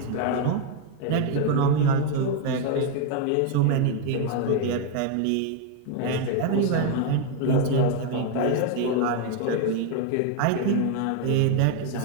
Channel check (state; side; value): different; both; correlation 0.01